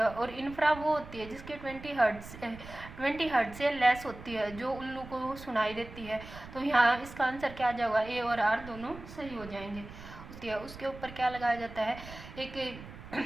और इंफ्रा वो होती है जिसकी 20 हर्ट्ज से लेस होती है, जो उल्लू को सुनाई देती है। तो यहाँ इसका आंसर क्या आ जाएगा? ए और आर दोनों सही हो जाएंगे। उसके ऊपर क्या लगाया जाता है? एक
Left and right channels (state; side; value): noise; right; rumble, 15 dB below the sound